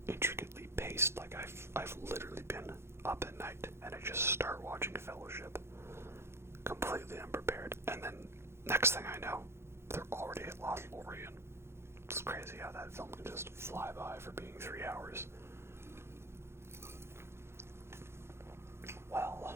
intricately paced. Like, I've literally been up at night and I just start watching Fellowship completely unprepared, and then next thing I know, they're already at Lothlorien. It's crazy how that film can just fly by for being 3 hours. Well,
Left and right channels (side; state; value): left; late; 0.12 ms